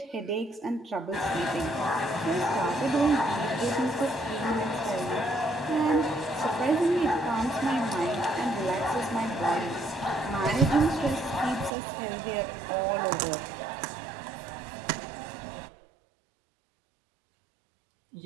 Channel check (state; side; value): drops out; left; at 11.7 s